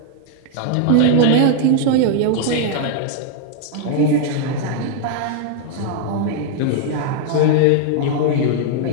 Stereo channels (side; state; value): both; different; correlation 0.00